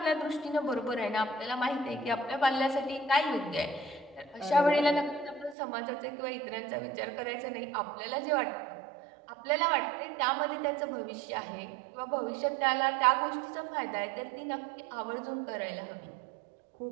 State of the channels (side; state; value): left; drops out; at 5.6 s